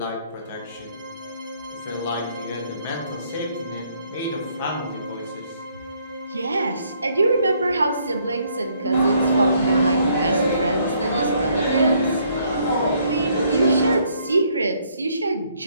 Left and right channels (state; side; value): inverted; both; correlation -0.68